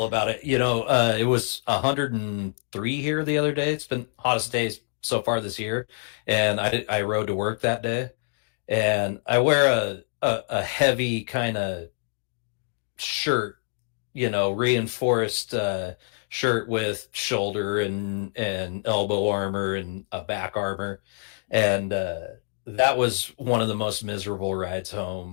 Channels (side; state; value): right; silent; digital silence